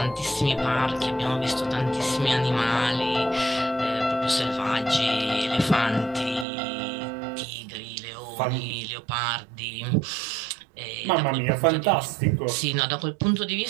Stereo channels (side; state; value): left; drops out; at 6.5 s